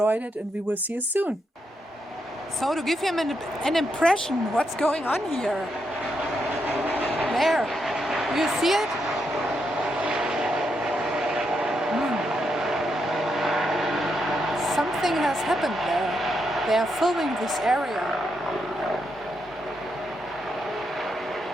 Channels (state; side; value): normal; both; correlation 0.81